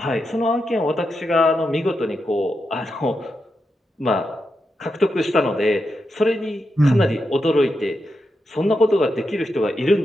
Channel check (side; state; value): both; normal; correlation 0.86